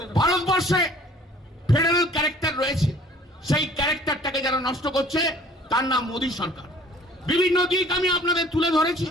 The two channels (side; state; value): both; normal; correlation 0.52